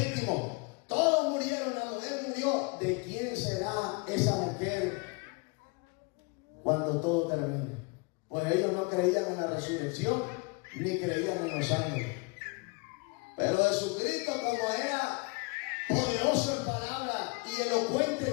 Todos murieron, la mujer murió. ¿De quién será esa mujer cuando todo termine? Pues ellos no creían en la resurrección ni creían en los ángeles. Pero Jesucristo, como era poderoso en palabras y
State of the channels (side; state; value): right; quieter; 29.7 dB